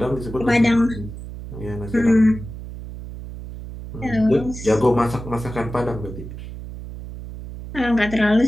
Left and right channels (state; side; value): noise; right; hum, 11 dB below the sound